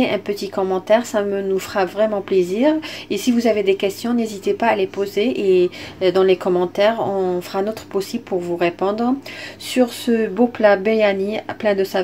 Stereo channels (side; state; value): both; identical; correlation 1.00